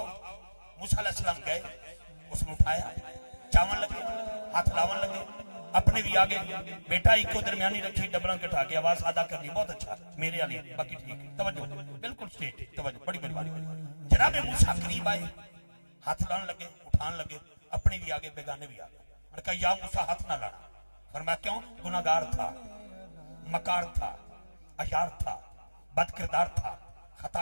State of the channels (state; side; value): inverted; both; correlation -1.00